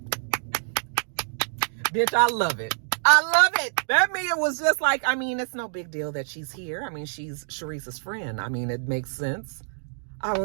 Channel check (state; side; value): silent; left; digital silence